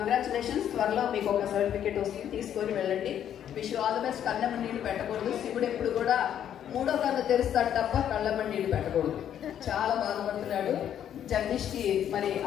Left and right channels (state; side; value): quieter; right; 9.9 dB